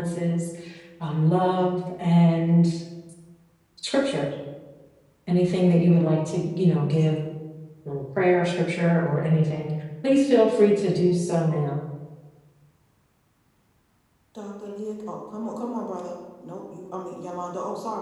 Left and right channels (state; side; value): identical; both; correlation 1.00